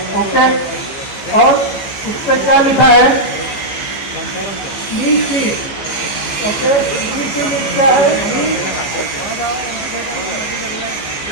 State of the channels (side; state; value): right; late; 14 ms